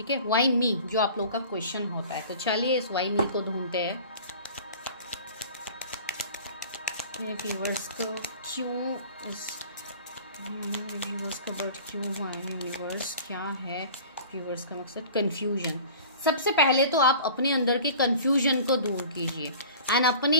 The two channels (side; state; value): both; inverted; correlation -0.43